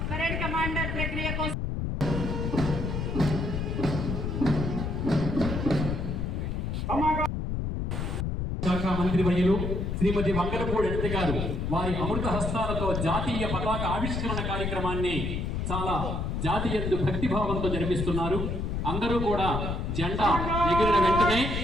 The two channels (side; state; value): left; noise; rumble, 2 dB below the sound